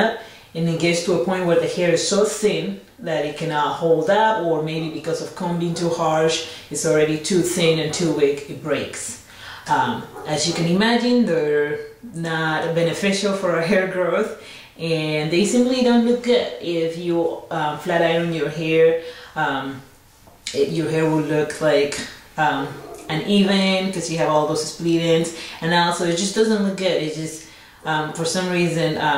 and it gets to a point where the hair is so thin that it cannot hold up, or maybe because of combing too harsh, it's already too thin and too weak, it breaks. As you can imagine, they're not beneficial for our hair growth, and they simply don't look good. If you flat iron your hair, your hair will look like uneven because you have all those split ends, and also it just doesn't look good. It just for some reason,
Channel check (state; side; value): identical; both; correlation 1.00